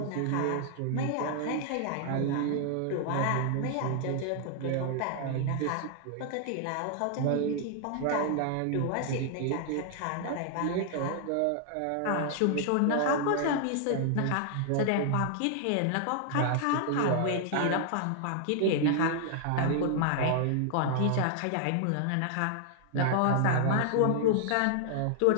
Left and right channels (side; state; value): both; different; correlation 0.00